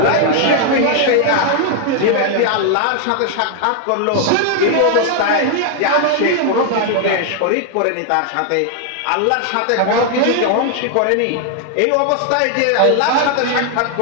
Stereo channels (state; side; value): different; both; correlation 0.00